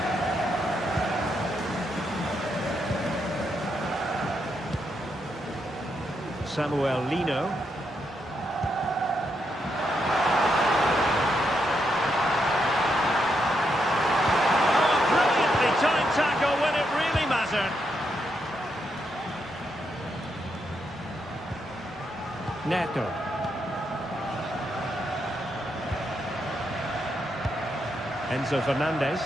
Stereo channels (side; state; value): both; normal; correlation 0.80